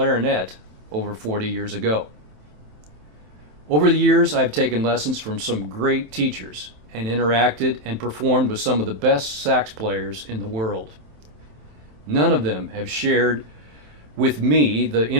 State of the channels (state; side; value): late; left; 27 ms